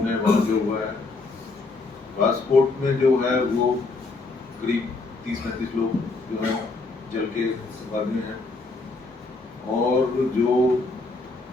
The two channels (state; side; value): quieter; right; 3.6 dB